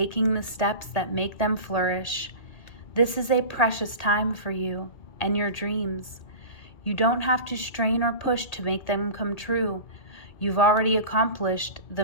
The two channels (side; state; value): right; late; 1.8 ms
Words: the steps that make them flourish. This is a precious time for you and your dreams. You don't have to strain or push to make them come true. You've already accomplished the